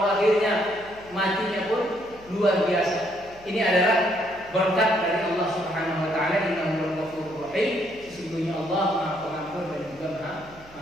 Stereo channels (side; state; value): right; noise; hum, 24 dB below the sound